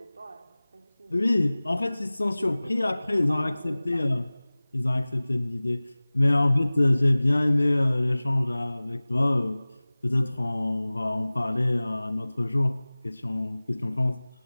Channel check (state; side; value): inverted; both; correlation -0.99